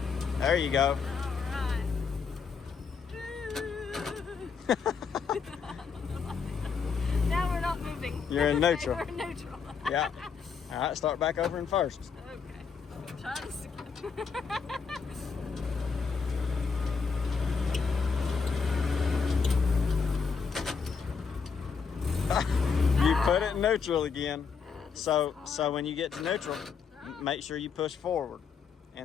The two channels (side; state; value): right; quieter; 5.7 dB